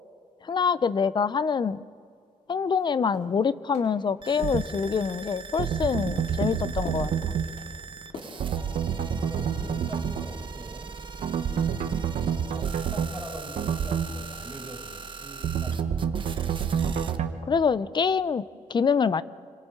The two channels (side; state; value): both; normal; correlation 0.56